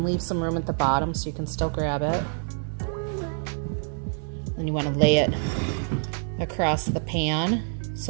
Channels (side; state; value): left; silent; 61 dB below the other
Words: leave some room at the bottom so you can still grab it. Then you want to lay it across the pan